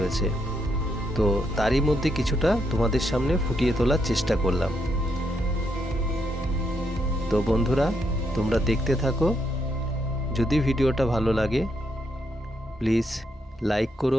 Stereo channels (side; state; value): both; normal; correlation 0.78